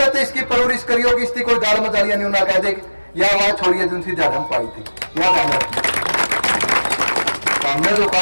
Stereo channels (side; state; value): both; inverted; correlation -1.00